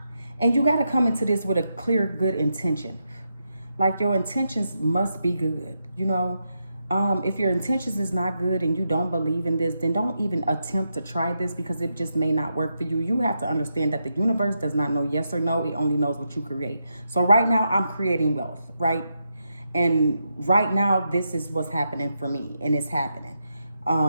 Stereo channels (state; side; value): inverted; both; correlation -0.84